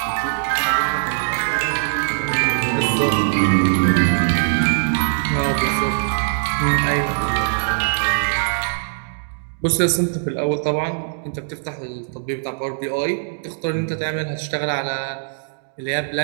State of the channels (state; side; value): silent; left; digital silence